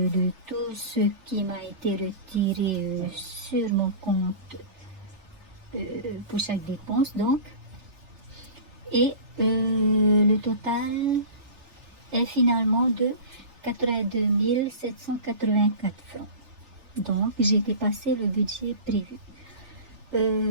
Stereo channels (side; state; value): left; late; 3.4 ms